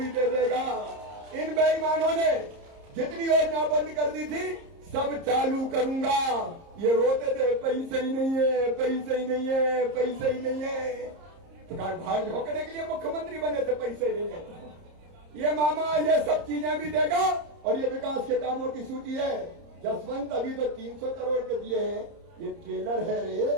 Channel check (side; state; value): left; late; 30 ms